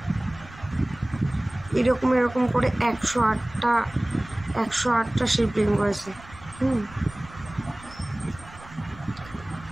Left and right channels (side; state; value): right; noise; rumble, 19 dB below the sound